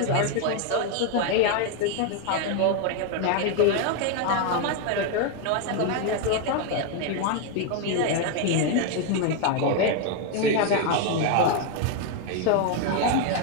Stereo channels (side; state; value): both; different; correlation 0.01